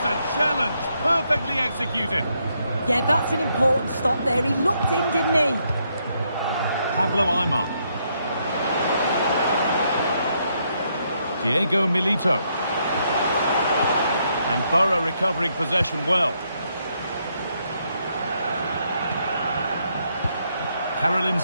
challenge. Perfectly executed. Yeah, that's an important stop there. He looked in, didn't he? Pablo Aimar. Diego Milito. And Borough recovering possession well. Carolyn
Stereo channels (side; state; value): both; inverted; correlation -0.76